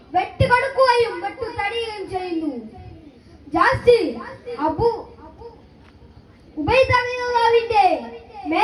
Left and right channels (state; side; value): identical; both; correlation 1.00